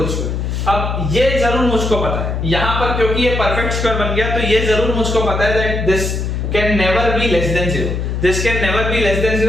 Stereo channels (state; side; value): noise; left; hum, 2 dB below the sound